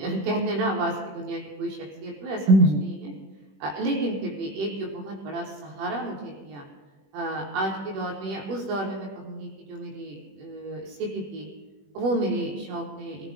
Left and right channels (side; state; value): left; late; 21 ms